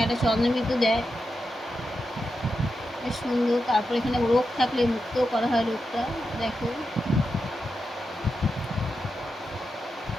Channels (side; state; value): both; normal; correlation 0.88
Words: একটা চন্দ্রবিন্দু দেয়, বেশ সুন্দর। তারপর এখানে রোগ থাকলে মুক্ত করা হয় রোগটা, দেখো।